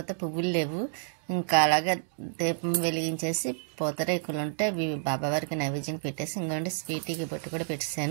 పువ్వులు లేవు. ఇంకా అలాగే దీపం వెలిగించేసి పూతరేకులు ఉంటే అవి బాబావారికి నైవేద్యం పెట్టేసి ఇంకోండి స్వీటీకి బొట్టు కూడా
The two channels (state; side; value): silent; left; digital silence